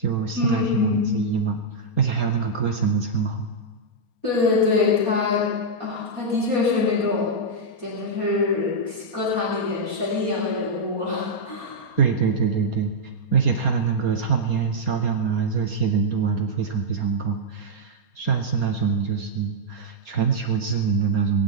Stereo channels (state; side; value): late; right; 4.3 ms